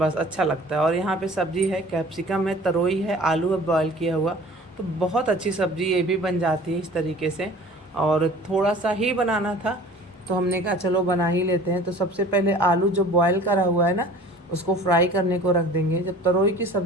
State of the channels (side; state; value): both; normal; correlation 0.45